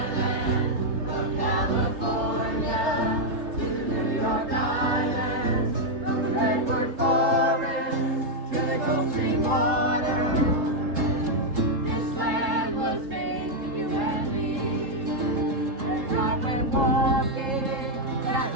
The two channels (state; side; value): late; left; 3.7 ms